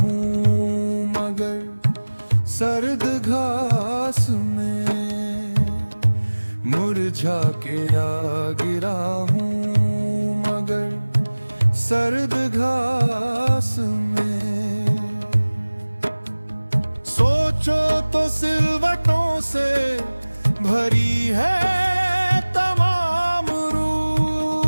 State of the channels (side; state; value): both; inverted; correlation -1.00